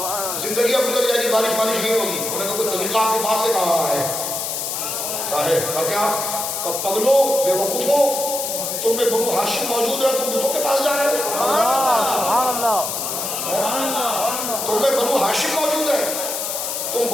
زندگی اب گزر جائے گی، بارش نہیں ہوگی۔ انہوں نے کہا کوئی طریقہ آپ کے پاس سے کہا ہے؟ کہا ہے کیا؟ پگلو بے وقوفو، تم میں بنو ہاشم موجود ہے، تم بتوں کے پاس جا رہے ہو؟ سبحان اللہ، تم میں بنو ہاشم موجود ہے، تم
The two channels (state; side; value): noise; left; hiss, 3 dB below the sound